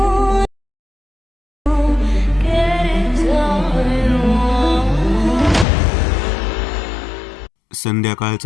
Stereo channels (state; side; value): drops out; right; at 5.7 s